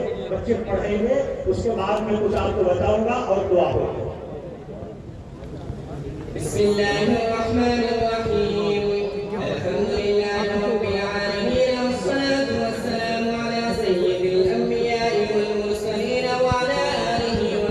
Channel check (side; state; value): both; identical; correlation 1.00